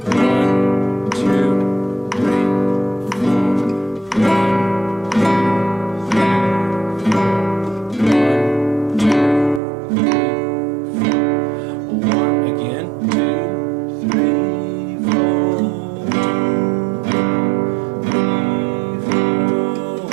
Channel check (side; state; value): left; drops out; at 9.6 s